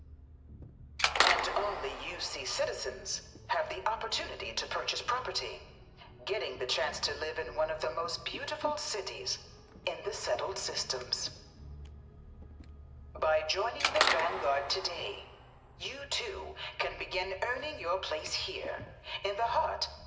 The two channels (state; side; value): identical; both; correlation 1.00